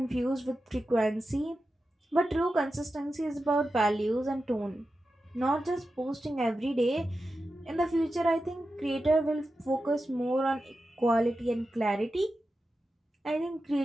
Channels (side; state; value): both; normal; correlation 0.91